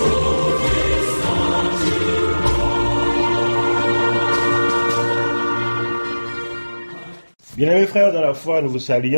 Bien-aimés frères dans la foi, nous vous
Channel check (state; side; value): inverted; both; correlation -1.00